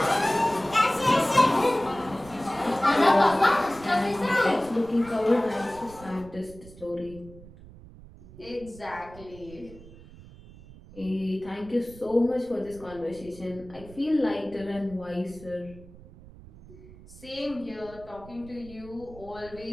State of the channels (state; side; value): noise; right; rumble, 19 dB below the sound